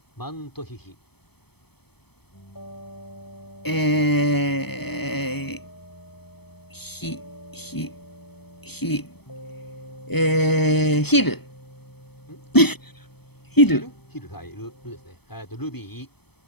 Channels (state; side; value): late; right; 0.97 ms